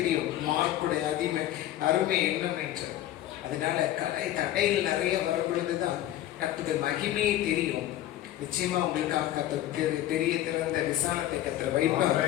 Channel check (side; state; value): right; quieter; 13.3 dB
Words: மார்க்குடைய அருமை என்னன்னு என்று. அதனால தடைகள் நிறைய வரும் பொழுதுதான் கர்த்தருடைய மகிமையை தெரியும். நிச்சயமா உங்களுக்காக பெரிய திறந்த விசாலத்தை கர்த்தர் வைப்பார்.